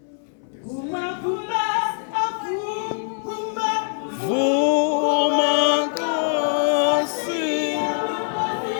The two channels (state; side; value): silent; right; 63 dB below the other